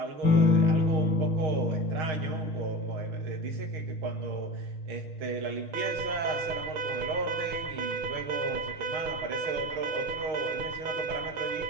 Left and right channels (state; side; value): late; left; 6.4 ms